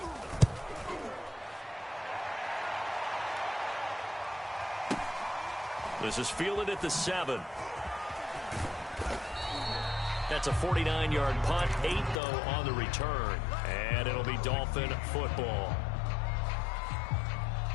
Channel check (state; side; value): drops out; right; at 12.2 s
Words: This is fielded at the 7. That's a 49-yard punt, 8 though on the return. And it'll be Dolphin football.